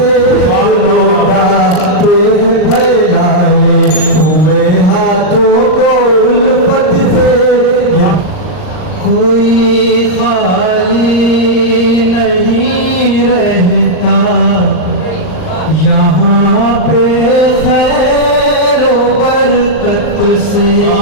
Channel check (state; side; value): late; right; 39 ms